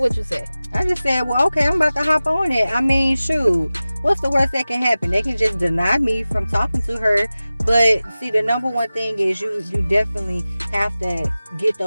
you say? I just said, well, okay, I'm about to hop on it. I mean, shoot, what's the worst that can happen? They can just deny me from talking to her. But see, the number one thing is you definitely have to get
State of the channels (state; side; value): inverted; both; correlation -0.96